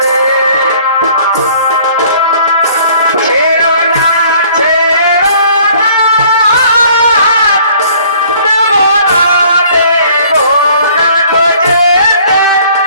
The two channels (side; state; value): both; inverted; correlation -0.56